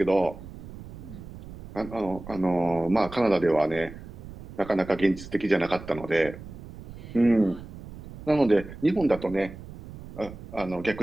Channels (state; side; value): noise; right; rumble, 14 dB below the sound